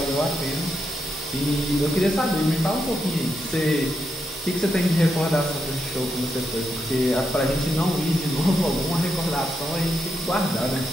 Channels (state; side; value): normal; both; correlation 0.83